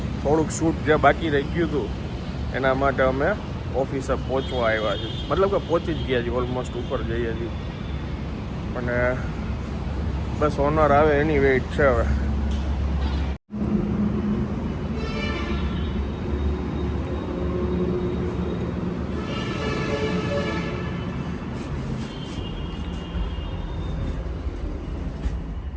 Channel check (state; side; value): identical; both; correlation 1.00